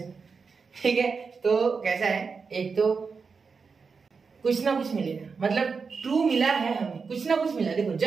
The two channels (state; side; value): quieter; left; 5.1 dB